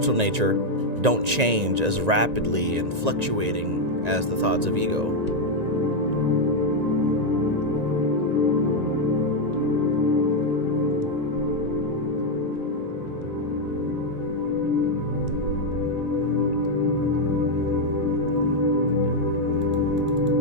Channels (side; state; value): left; late; 1.9 ms